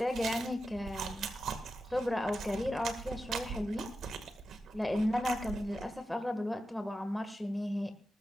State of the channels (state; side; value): normal; both; correlation 0.91